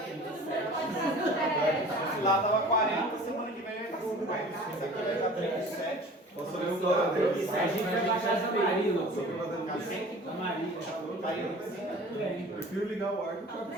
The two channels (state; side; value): normal; both; correlation 0.44